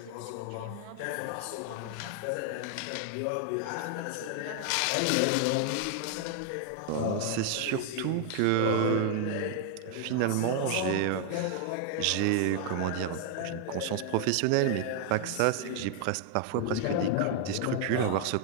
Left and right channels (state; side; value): different; both; correlation 0.00